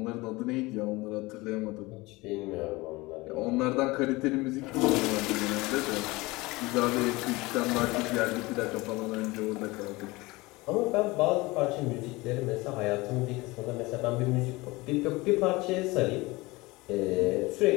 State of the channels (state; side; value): quieter; right; 22.2 dB